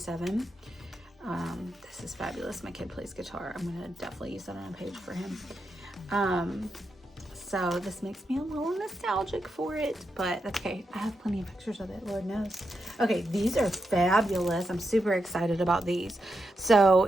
This is fabulous. My kid plays guitar. I'm gonna definitely use that on a page for him. So this makes me a little nostalgic for it, but that's okay. I have plenty of pictures of it, Lord knows. Okay, these are fabulous. I'm super excited about these. So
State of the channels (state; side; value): normal; both; correlation 0.85